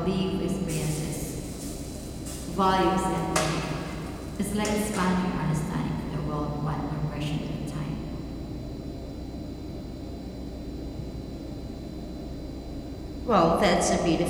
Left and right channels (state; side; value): identical; both; correlation 1.00